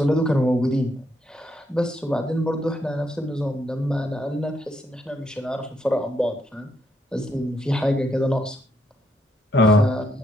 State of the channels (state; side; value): normal; both; correlation 0.75